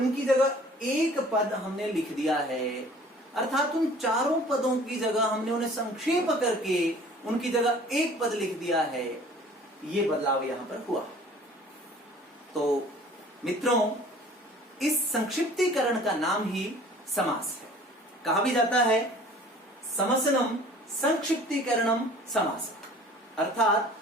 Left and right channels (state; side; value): normal; both; correlation 0.49